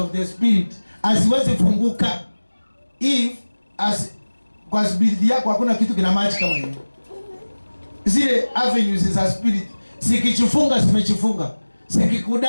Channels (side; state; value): both; inverted; correlation -1.00